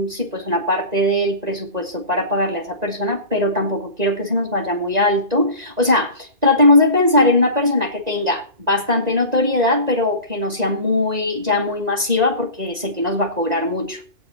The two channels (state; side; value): late; left; 1.9 ms